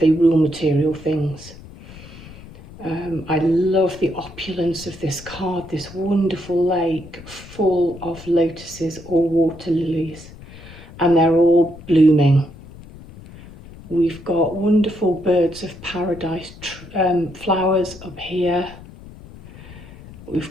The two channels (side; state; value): left; noise; rumble, 18 dB below the sound